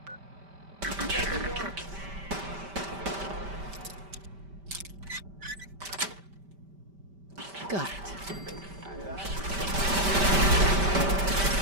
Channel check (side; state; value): left; late; 5.1 ms